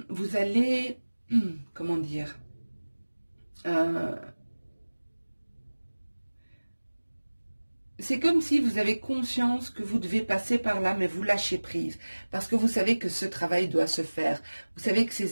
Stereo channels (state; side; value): inverted; both; correlation -1.00